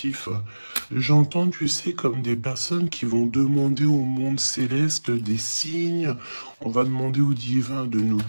J'entends, tu sais, comme des personnes qui vont demander au monde céleste des signes. On va demander au divin de nous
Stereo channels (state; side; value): inverted; both; correlation -1.00